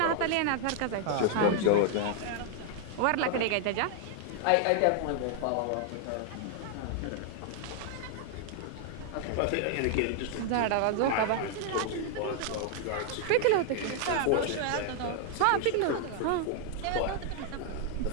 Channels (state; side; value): different; both; correlation 0.00